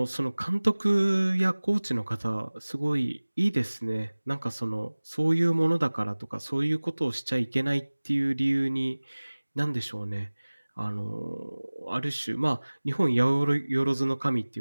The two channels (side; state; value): both; inverted; correlation -1.00